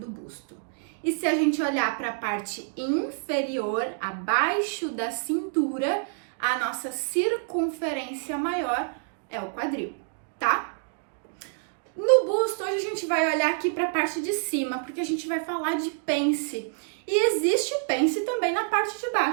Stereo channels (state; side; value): silent; left; digital silence